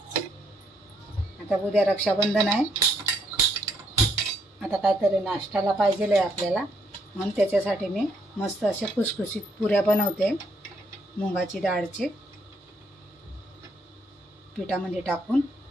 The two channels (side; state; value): both; normal; correlation 0.72